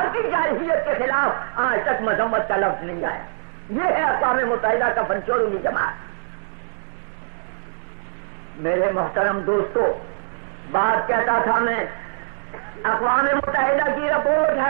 جارحیت کے خلاف آج تک مذمت کا لفظ نہیں آیا. یہ ہے اقوام متحدہ کا فنچوروں کی جماعت. میرے محترم دوستو، بات کہتا تھا میں، اقوام متحدہ کی رپورٹ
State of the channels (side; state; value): left; silent; 63 dB below the other